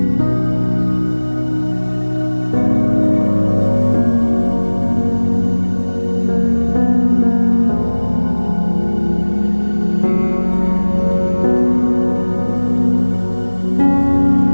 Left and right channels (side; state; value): both; inverted; correlation -1.00